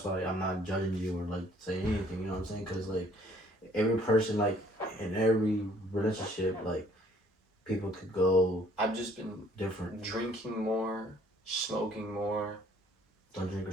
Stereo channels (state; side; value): normal; both; correlation 0.59